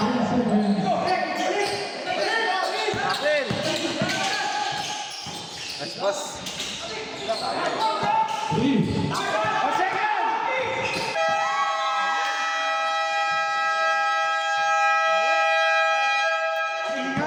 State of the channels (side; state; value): both; identical; correlation 1.00